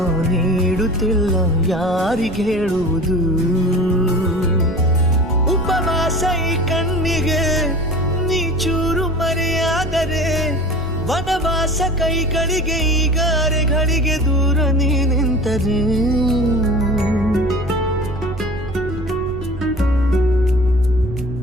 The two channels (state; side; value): noise; right; rumble, 11 dB below the sound